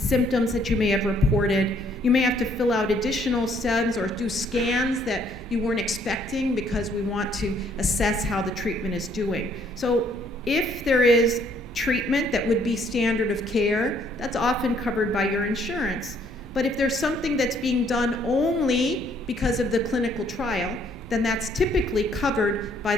that you may have reported. You may have to fill out additional SEMS or do scans that you weren't expecting, because we want to assess how the treatment is doing. So if there is treatment that would be standard of care, that's often covered by your insurance. But if there's something that's being done only because of the clinical trial, then that's typically covered by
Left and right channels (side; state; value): both; normal; correlation 0.65